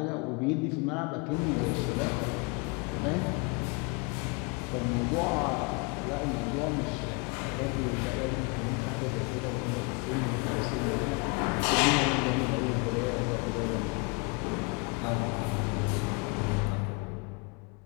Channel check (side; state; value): right; quieter; 30.4 dB